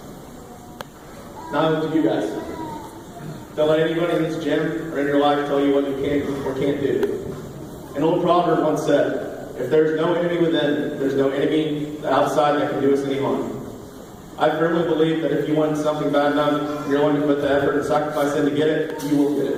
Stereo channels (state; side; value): identical; both; correlation 1.00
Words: Now to you guys. Don't let anybody in this gym or in your life tell you what you can or can't do. An old proverb once said, if there's no enemy within, there's no enemy outside that can do us any harm. I firmly believe that if you want something bad enough, you're willing to put the effort and sacrifice in to get it, you will get